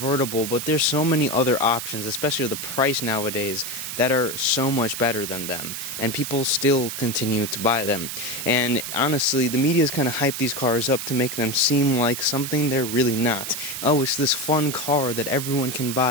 but there's so many other options, especially the price nowadays, that are so much better than them, and people still continue to buy them. And honestly, the media's kind of hyped these cars up to make them seem like something they're really not. Oh, it's this fun car that everyone can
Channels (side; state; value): right; noise; hiss, 6 dB below the sound